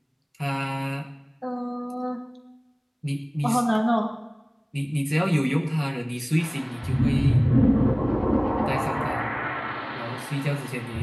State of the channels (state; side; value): identical; both; correlation 1.00